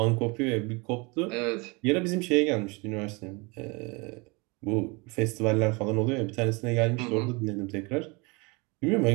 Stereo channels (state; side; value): quieter; left; 27.9 dB